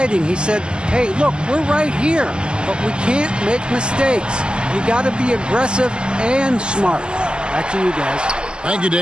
He said, hey, look, we're right here, but we can't make mistakes. You got to be aggressive and smart. Back to you guys. Thank you,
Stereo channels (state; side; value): late; left; 0.048 ms